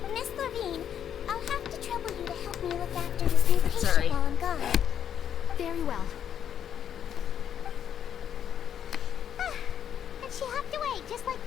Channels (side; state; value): right; quieter; 9.1 dB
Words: Miss Levine, I'll have to trouble you to help me look after this new patient while I'm gone. Very well. And she hopped away, just like